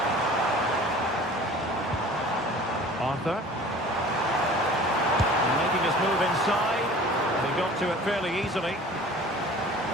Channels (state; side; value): normal; both; correlation 0.45